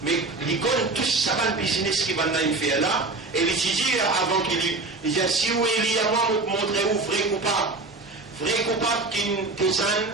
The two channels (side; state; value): left; quieter; 3.4 dB